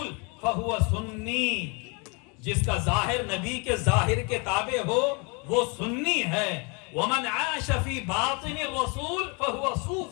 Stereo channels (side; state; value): right; quieter; 32.1 dB